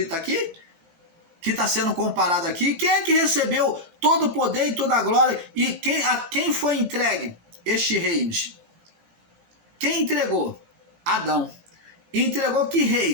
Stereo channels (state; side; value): late; left; 17 ms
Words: aqui? Que está sendo comparado aqui? Quem é que recebeu todo o poder e toda a glória? E a quem foi entregue estes reinos? Quem entregou? Adão. Entregou que